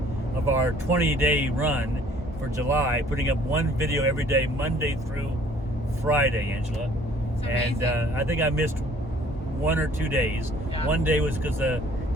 of our 20-day run for July, putting up one video every day, Monday through Friday, Angela. And I think I missed 1 or 2 days. Yeah. One day was because the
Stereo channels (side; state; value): both; normal; correlation 0.56